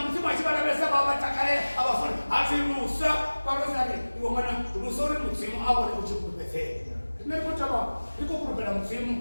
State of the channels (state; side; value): inverted; both; correlation -1.00